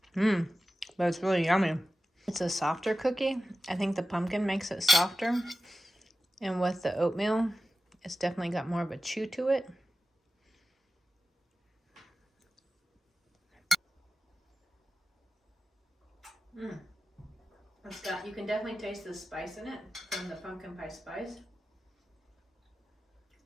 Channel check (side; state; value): both; normal; correlation 0.94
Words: But it's really yummy. It's a softer cookie. I think the pumpkin makes it softer. And with the oatmeal, it's definitely got more of a chew to it. You can definitely taste the spice in it from the pumpkin pie spice.